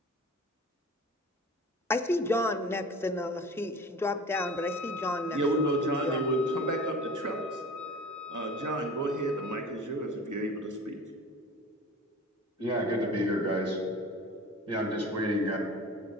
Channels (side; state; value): both; normal; correlation 0.40